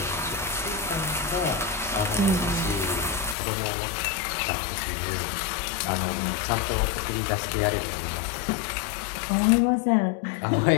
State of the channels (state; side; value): drops out; right; at 3.4 s